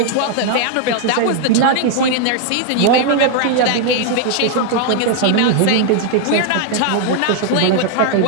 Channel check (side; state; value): both; different; correlation 0.00